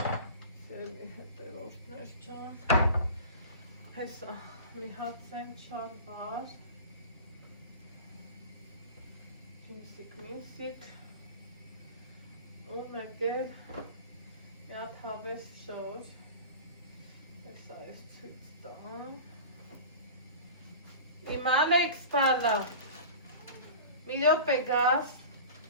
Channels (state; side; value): inverted; both; correlation -0.35